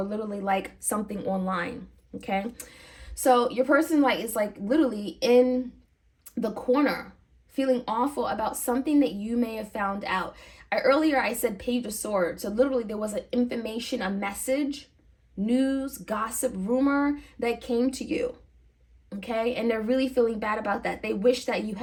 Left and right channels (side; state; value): both; identical; correlation 1.00